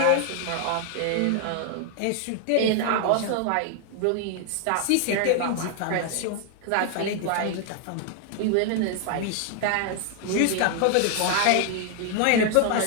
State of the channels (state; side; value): different; both; correlation 0.00